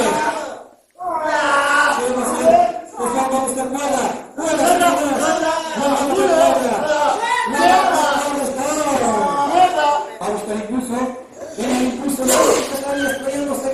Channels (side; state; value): both; identical; correlation 1.00